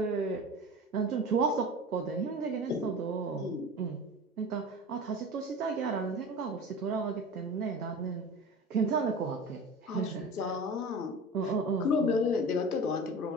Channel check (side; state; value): both; normal; correlation 0.34